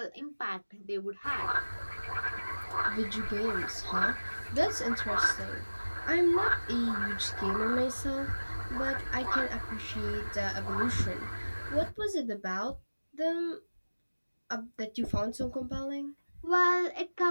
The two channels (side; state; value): both; inverted; correlation -1.00